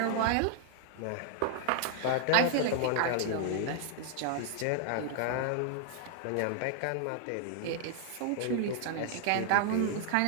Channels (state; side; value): different; both; correlation 0.00